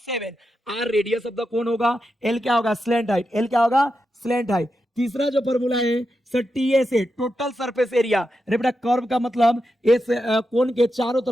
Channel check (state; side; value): normal; both; correlation 0.88